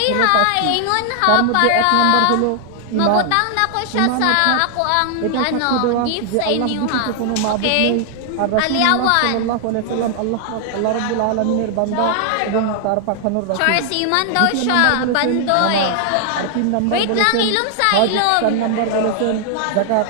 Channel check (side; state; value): both; different; correlation 0.00